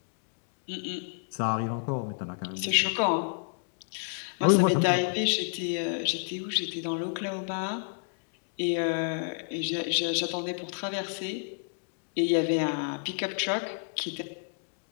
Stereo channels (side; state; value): right; silent; digital silence